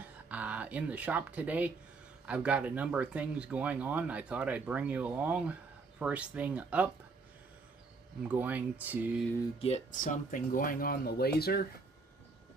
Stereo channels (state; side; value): quieter; left; 4.1 dB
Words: In the shop today, I've got a number of things going on. I thought I'd bring you along. First thing up, I'm going to get something going on the laser